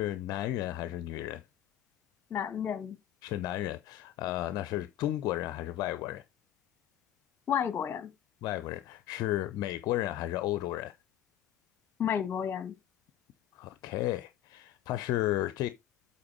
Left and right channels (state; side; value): quieter; right; 11.9 dB